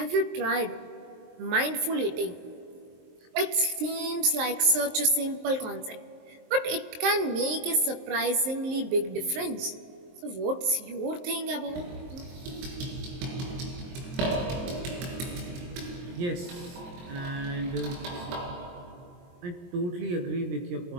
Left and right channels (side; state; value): left; late; 23 ms